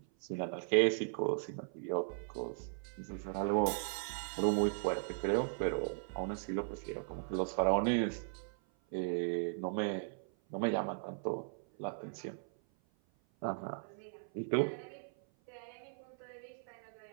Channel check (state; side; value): silent; left; 53 dB below the other